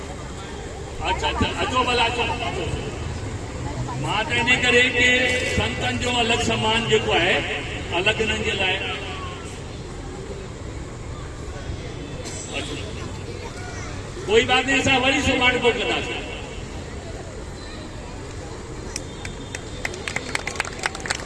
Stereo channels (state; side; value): identical; both; correlation 1.00